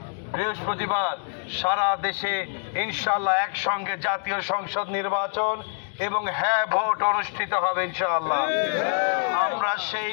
বৃহস্পতিবার সারা দেশে ইনশাআল্লাহ একসঙ্গে জাতীয় সংসদ নির্বাচন এবং হ্যাঁ ভোট অনুষ্ঠিত হবে ইনশাআল্লাহ। আমরা সেই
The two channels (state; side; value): silent; right; 61 dB below the other